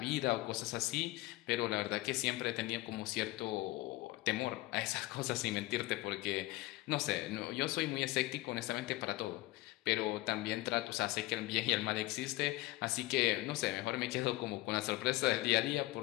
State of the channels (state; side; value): quieter; right; 19.3 dB